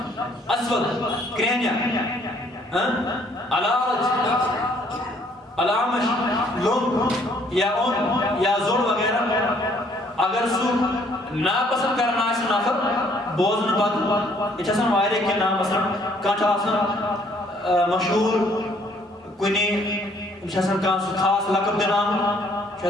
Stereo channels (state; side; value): normal; both; correlation 0.63